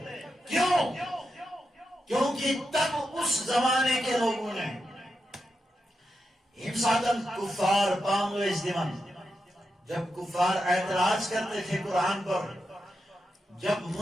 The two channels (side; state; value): both; normal; correlation 0.87